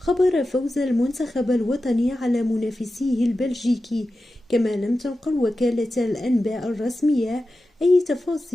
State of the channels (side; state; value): both; normal; correlation 0.93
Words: فوز المنتخب الوطني على منافسيه البلجيكي، كما لم تنقل وكالة الأنباء الرسمية أي